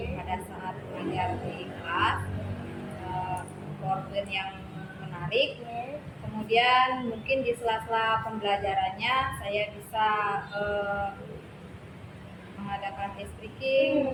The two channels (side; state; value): both; identical; correlation 1.00